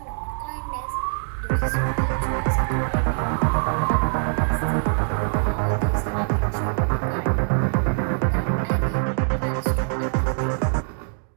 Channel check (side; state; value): left; silent; digital silence